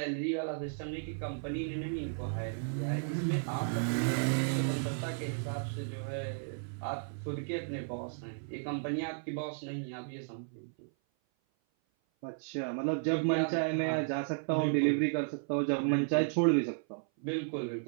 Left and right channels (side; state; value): left; silent; 55 dB below the other